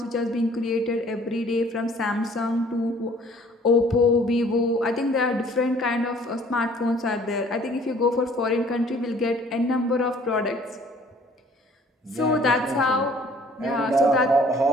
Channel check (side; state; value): both; normal; correlation 0.55